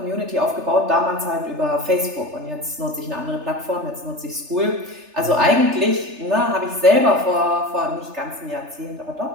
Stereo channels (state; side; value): late; left; 3.3 ms